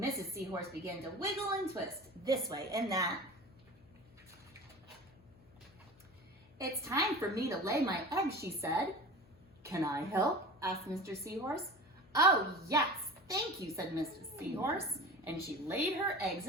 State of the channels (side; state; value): left; noise; hum, 27 dB below the sound